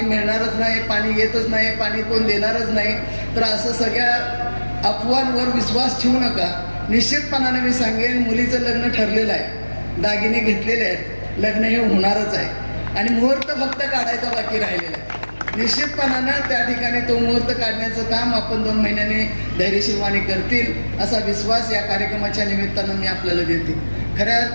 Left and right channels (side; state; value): both; inverted; correlation -1.00